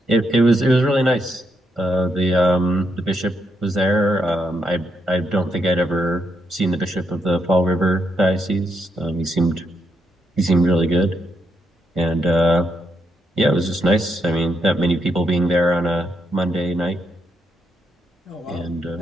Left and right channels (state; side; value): normal; both; correlation 0.79